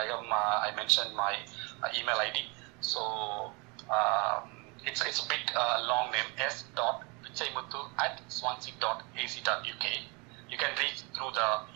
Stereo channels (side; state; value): left; quieter; 29.7 dB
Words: mentioned my email ID. So it's a bit long name, s.pichaimuthu@swansea.ac.uk. You can reach through the